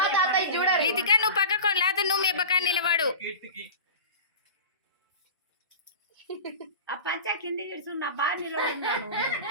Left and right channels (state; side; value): inverted; both; correlation -0.33